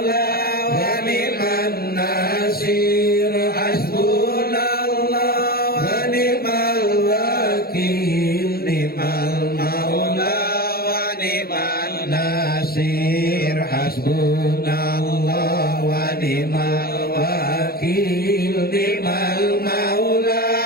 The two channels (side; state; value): right; late; 0.44 ms